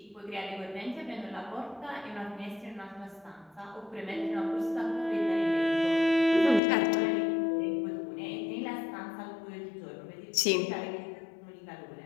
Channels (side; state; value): right; drops out; at 6.6 s